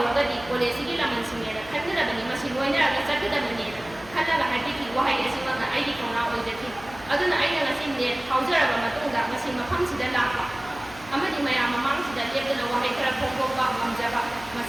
कॉलेजगी लमन सिंगेरा खन्नदबनि मसि लोइनरगा चटदबनि खल्लगा हाइटिकी वहाइ एसिमगा आइदि कौना ओइदति अदुना आइना ngasi नेट खाउजरबा मतुंगा मसि मफमसिदा लापा अमदि मयाम ममांगसिदा लेबदना वहाइ खरा फोंफोबा गमजबा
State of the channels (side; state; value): left; noise; hum, 19 dB below the sound